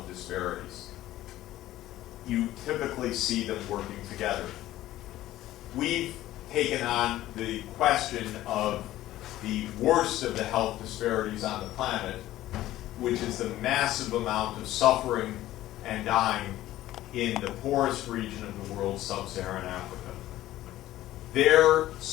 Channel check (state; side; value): quieter; right; 14.7 dB